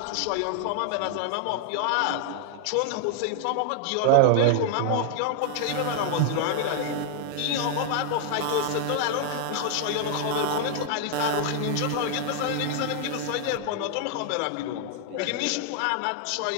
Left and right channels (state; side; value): different; both; correlation 0.00